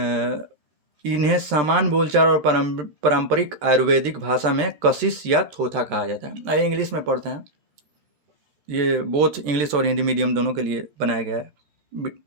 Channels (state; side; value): late; left; 13 ms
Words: इन्हें सामान्य बोलचाल और पारंपरिक आयुर्वेदिक भाषा में कशिश या थोथा कहा जाता है। आइए इंग्लिश में पढ़ते हैं। ये बोथ इंग्लिश और हिंदी मीडियम दोनों के लिए बनाया गया है।